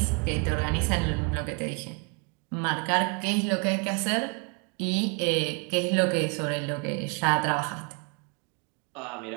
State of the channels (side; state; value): left; quieter; 34.1 dB